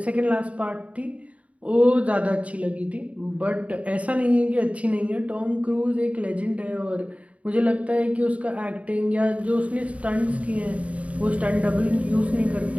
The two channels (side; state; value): left; late; 0.066 ms